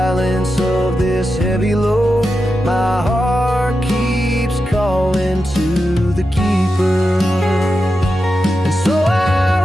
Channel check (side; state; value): both; normal; correlation 0.89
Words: of this heavy load, my heart keeps calling to the keeper. And so I